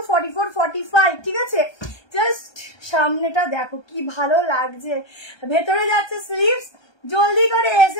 44, 45, ঠিক আছে। জাস্ট সামনেটা দেখো কি ভালো লাগছে, ভেতরে যাচ্ছে স্লিভস। জলদি করে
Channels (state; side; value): late; right; 1.3 ms